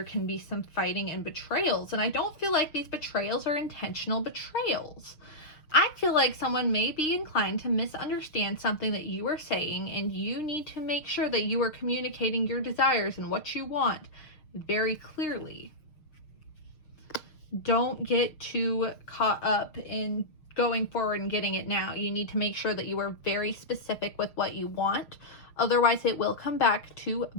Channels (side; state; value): right; late; 6.5 ms